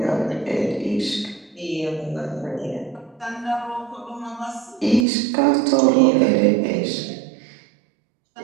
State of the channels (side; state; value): left; drops out; at 5.1 s